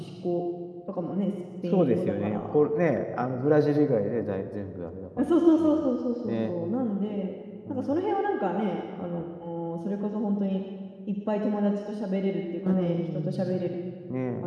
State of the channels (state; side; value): identical; both; correlation 1.00